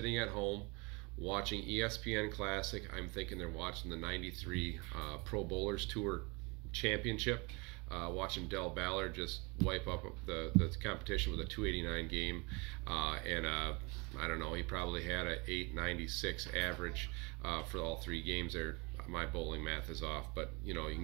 at home watching ESPN Classic. I'm thinking they're watching the 93 Pro Bowlers Tour Championship, watching Del Ballard just wipe up the competition with a 289 game, and I don't know, he probably had a 896 average for all 3 games there. My bowling math is off, but you know, you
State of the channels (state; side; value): quieter; left; 28.2 dB